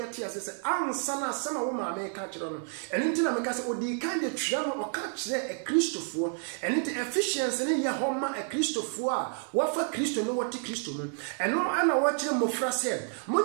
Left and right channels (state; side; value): silent; left; 58 dB below the other